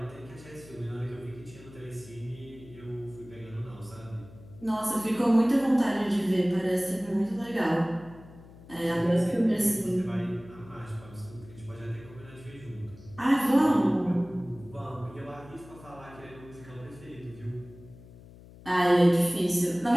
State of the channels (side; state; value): left; noise; hum, 20 dB below the sound